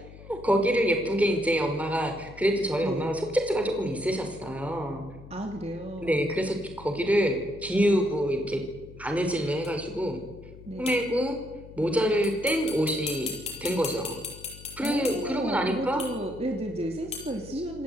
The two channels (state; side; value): noise; left; hum, 18 dB below the sound